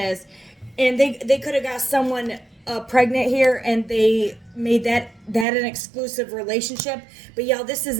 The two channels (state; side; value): drops out; left; at 5.5 s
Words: And they could have got someone pregnant here and they made that an exclusive relationship. But y'all, this